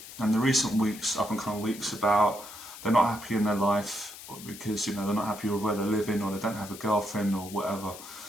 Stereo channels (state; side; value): noise; left; hiss, 14 dB below the sound